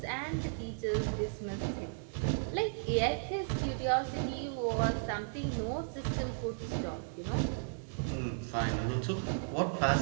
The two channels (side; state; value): left; silent; digital silence